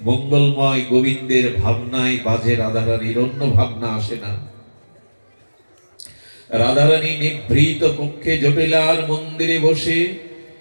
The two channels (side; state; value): both; inverted; correlation -1.00